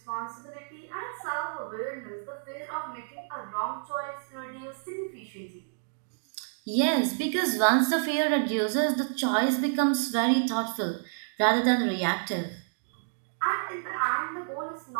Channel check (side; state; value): left; silent; digital silence